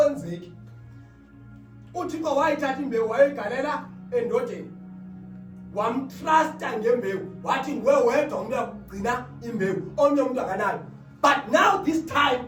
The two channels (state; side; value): identical; both; correlation 1.00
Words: uThixo wayithatha imbewu wayigalela endodeni, wamtrusta ngembewu, wathi nguwe wedwa umuntu uyakugcina imbewu, omnye umuntu akanayo. But now this time